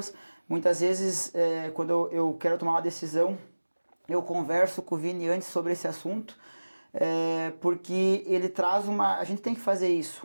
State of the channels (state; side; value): inverted; both; correlation -1.00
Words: Muitas vezes, quando eu quero tomar uma decisão, eu converso com o Vini antes sobre esse assunto, porque ele traz a gente tem que fazer isso